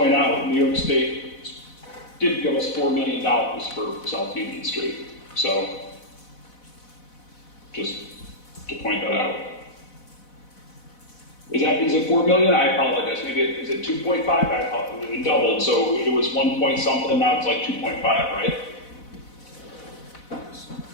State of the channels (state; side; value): late; right; 4.0 ms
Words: out, New York State did give us $4 million for South Union Street. So, just to point that out. Is it 4 million? I apologize. Maybe is it 2.5? I apologize. It doubled. So it was 1 point something. Now it's like 2.5, right?